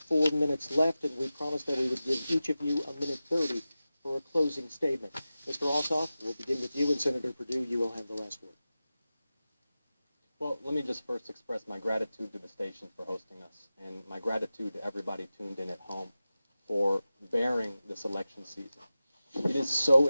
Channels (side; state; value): both; inverted; correlation -0.95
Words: 4 minutes left, and we promised that we would give each of you a minute 30 for a closing statement. Mr. Alsop, we'll begin with you, and Senator Perdue, you will have the last word. Well, let me just first express my gratitude to the station for hosting us, and my gratitude to everybody tuned in at home for bearing this election season. It is so